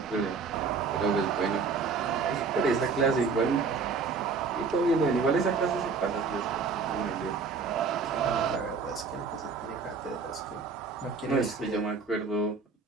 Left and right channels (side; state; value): left; quieter; 4.8 dB